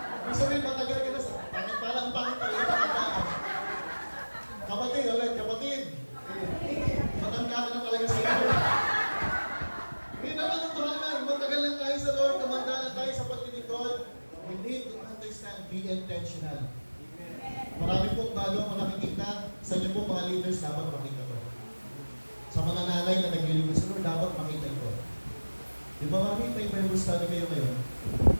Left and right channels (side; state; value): both; inverted; correlation -1.00